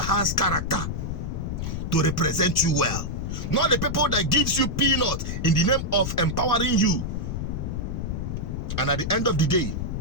has character to represent you well, not the people that gives you peanut in the name of empowering you. And at the end of the day,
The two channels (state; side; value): noise; left; rumble, 3 dB below the sound